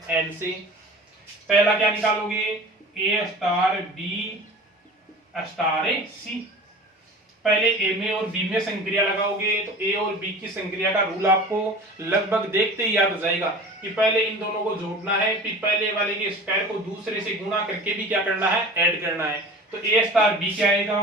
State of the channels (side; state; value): both; normal; correlation 0.39